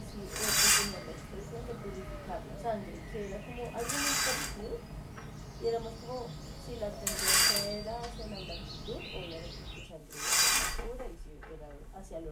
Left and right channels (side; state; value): both; identical; correlation 1.00